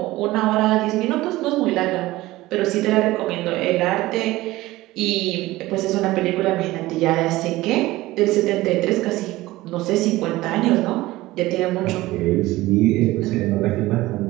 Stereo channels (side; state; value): left; quieter; 18.1 dB